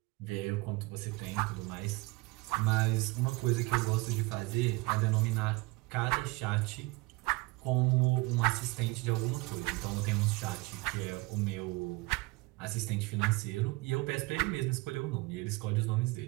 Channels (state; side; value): quieter; left; 24.0 dB